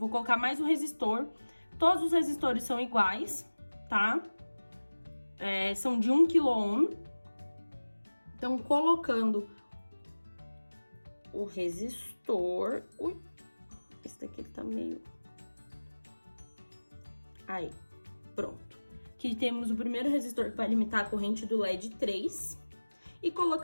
colocar mais um resistor. Todos os resistores são iguais, tá? São de 1 kΩ. Então, colocando o resistor... Ui, esse daqui ele tá meio... Aí, pronto. Aqui temos o primeiro resistor que vai limitar a corrente do LED 3. E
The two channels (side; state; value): both; inverted; correlation -1.00